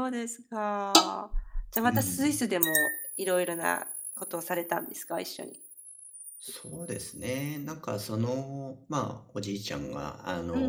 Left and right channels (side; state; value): both; identical; correlation 1.00